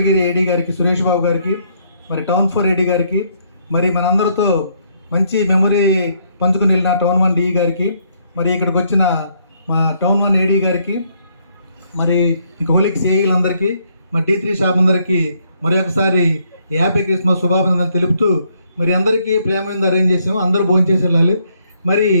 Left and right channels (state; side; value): inverted; both; correlation -0.71